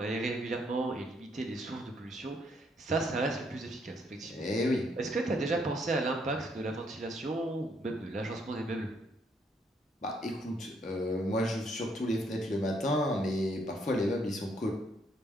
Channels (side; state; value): both; normal; correlation 0.71